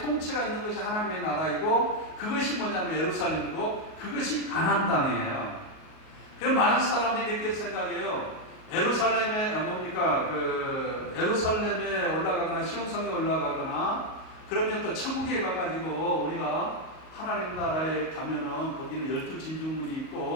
있는 것이 하나님의 나라이고 그것이 뭐냐면 예루살렘이고 그것이 가나안 땅이에요. 그래서 많은 사람들이 이렇게 생각해요. 예루살렘에 예루살렘에 올라가거나 시온성에 올라가거나 그러면 또 천국에 가가지고 우리가 하나님 나라에 가면은 거기는 12진주문이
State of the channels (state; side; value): late; right; 38 ms